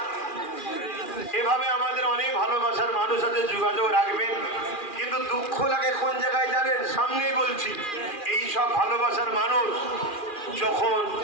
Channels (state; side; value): late; right; 2.4 ms